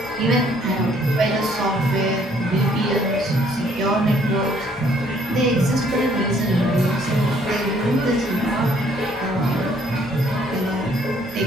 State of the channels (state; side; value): normal; both; correlation 0.63